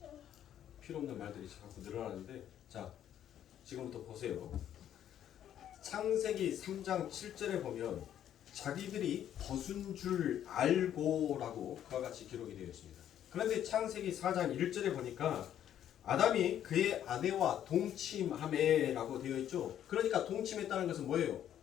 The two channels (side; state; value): right; quieter; 10.6 dB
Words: 필요 없는 말들이 자꾸 늘어나는데 자 지금부터 보세요. 창세기 3장 7절에 보면 자기들이 벗은 줄 알고라고 그와 같이 기록이 되어 있습니다. 그런데 창세기 4장 1절에 보니까 아담이 그의 아내와 동침하매라고 되어 있죠. 그러니까 동침했다는 것은 뭐예요?